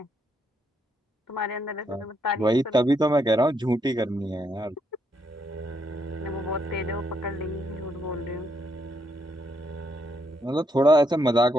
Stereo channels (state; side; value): normal; both; correlation 0.76